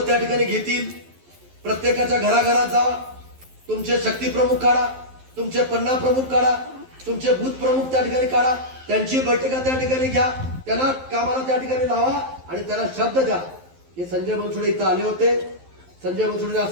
त्या ठिकाणी घेतील. प्रत्येकाच्या घराघरात जावा. तुमचे शक्ती प्रमुख काढा, तुमचे पन्ना प्रमुख काढा, तुमचे बूथ प्रमुख त्या ठिकाणी काढा. त्यांची बैठका त्या ठिकाणी घ्या. त्यांना कामाला त्या ठिकाणी लावा आणि त्यांना शब्द द्या की संजय बनसोडे इथं आले होते, संजय बनसोडे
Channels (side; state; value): left; late; 11 ms